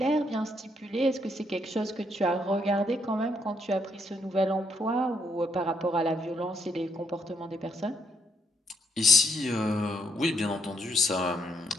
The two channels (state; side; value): normal; both; correlation 0.73